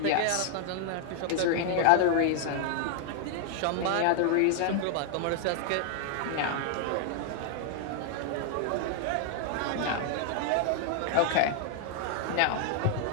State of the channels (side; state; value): both; different; correlation 0.00